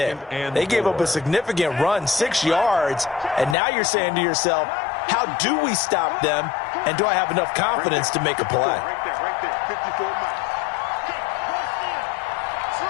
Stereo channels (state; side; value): drops out; right; at 3.6 s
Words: They gave up a significant run, 6 yards, and now you're saying to yourself, how do we stop them, and do I have enough confidence to make a play? Right there, 54 miles.